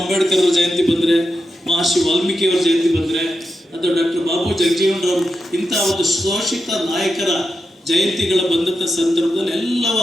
ಅವರ ಜಯಂತಿ ಬಂದರೆ, ಮಹರ್ಷಿ ವಾಲ್ಮೀಕಿಯವರ ಜಯಂತಿ ಬಂದರೆ, ಅಥವಾ ಡಾಕ್ಟರ್ ಬಾಬು ಜಗಜೀವನರಾವ್ ಇಂಥ ಒಂದು ಶೋಷಿತ ನಾಯಕರ ಜಯಂತಿಗಳ ಬಂದಂಥ ಸಂದರ್ಭದಲ್ಲಿ ಎಲ್ಲವ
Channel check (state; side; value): normal; both; correlation 0.87